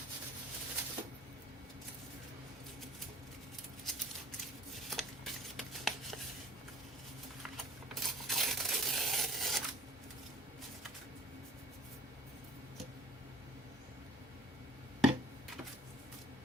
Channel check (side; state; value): both; normal; correlation 0.49